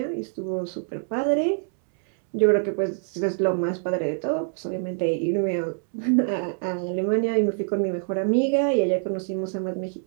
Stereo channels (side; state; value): left; silent; 62 dB below the other